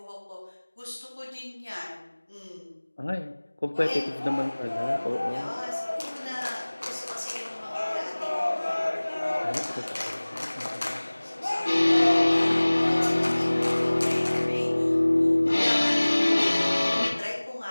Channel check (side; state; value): both; inverted; correlation -1.00